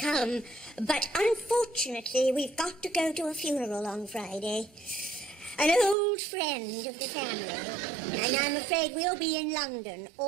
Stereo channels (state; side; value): drops out; left; at 6.0 s